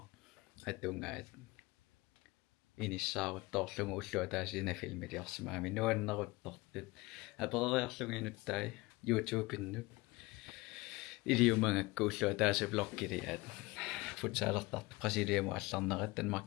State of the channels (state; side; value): quieter; right; 22.3 dB